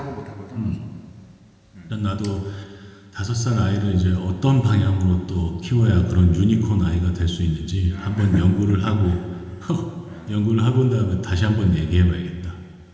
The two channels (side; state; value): both; identical; correlation 1.00